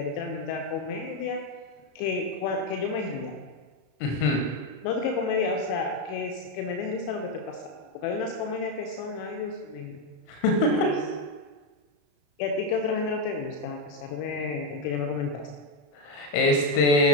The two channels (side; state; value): right; late; 34 ms